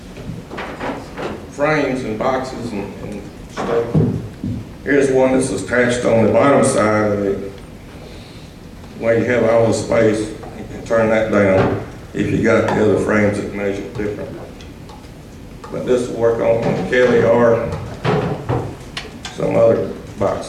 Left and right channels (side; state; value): both; identical; correlation 1.00